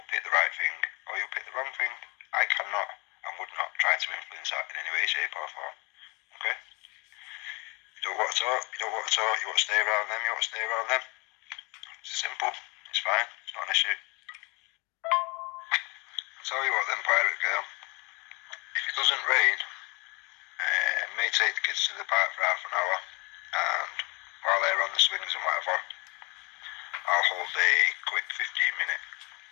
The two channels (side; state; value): right; quieter; 28.4 dB